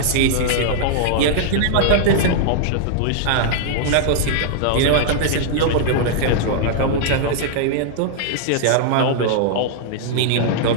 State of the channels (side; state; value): both; different; correlation -0.01